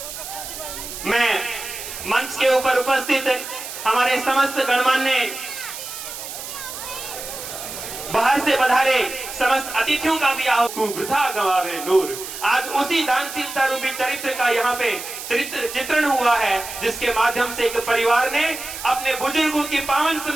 मैं मंच के ऊपर उपस्थित हमारे समस्त गणमान्य बाहर से पधारे समस्त अतिथियों का भी आओ वृथा गवावे नूर। आज उसी दानशीलता रूपी चरित्र का यहाँ पे चित्रण हुआ है, जिसके माध्यम से एक परिवार ने अपने बुजुर्गों की पावन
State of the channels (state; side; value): noise; right; hiss, 9 dB below the sound